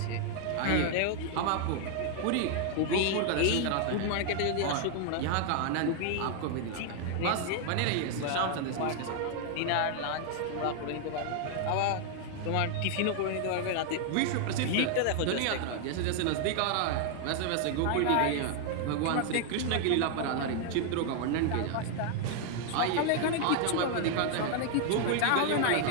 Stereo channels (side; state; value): both; different; correlation 0.00